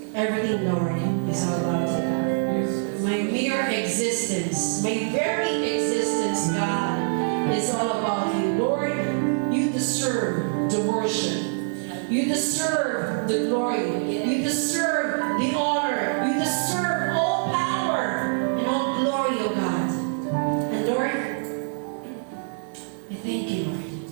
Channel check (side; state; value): left; silent; digital silence